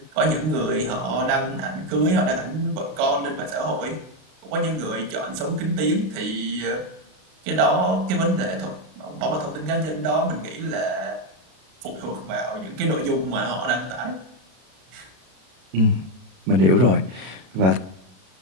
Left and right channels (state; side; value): late; left; 32 ms